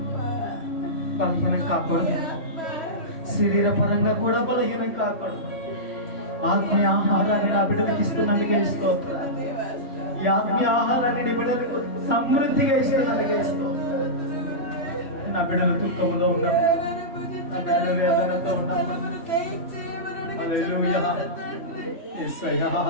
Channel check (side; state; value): right; late; 3.1 ms